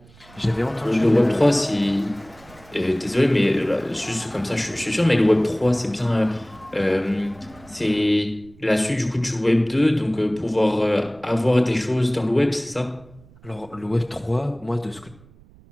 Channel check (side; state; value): right; noise; rumble, 25 dB below the sound